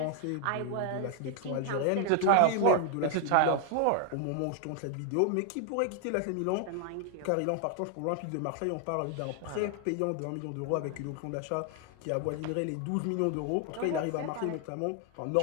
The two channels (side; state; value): both; different; correlation 0.00